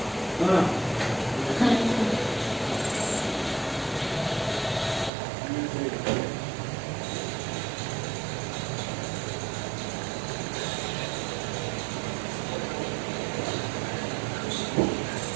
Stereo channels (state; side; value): drops out; left; at 5.1 s